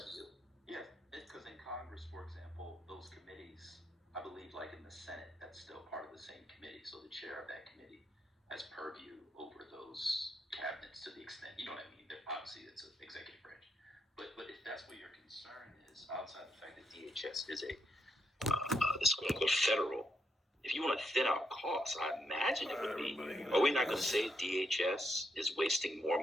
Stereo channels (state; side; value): normal; both; correlation 0.78